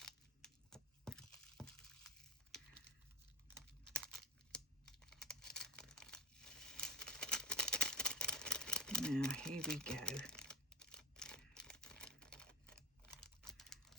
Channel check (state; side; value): normal; both; correlation 0.34